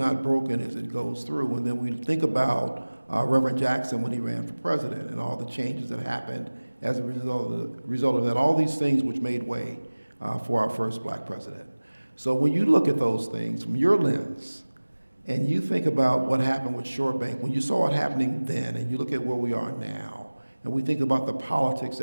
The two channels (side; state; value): both; inverted; correlation -1.00